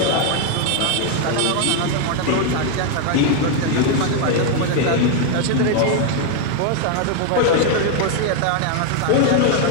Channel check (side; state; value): both; different; correlation 0.01